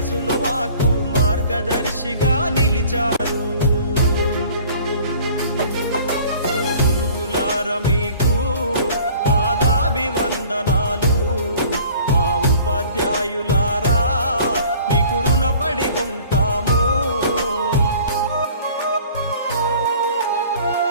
మాకు మార్గదర్శిగా నిలిచారు. మీకు పాదాభివందనాలు మా ఉపాధ్యాయులారా మీకు రుణపడి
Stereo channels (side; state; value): both; inverted; correlation -0.50